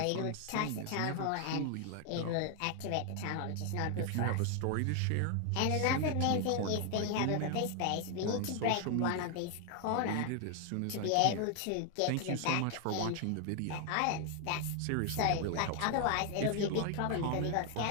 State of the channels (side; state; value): both; different; correlation 0.00